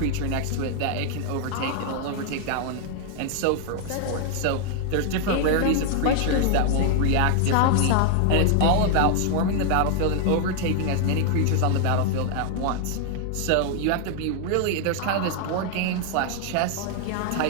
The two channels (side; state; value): both; different; correlation 0.00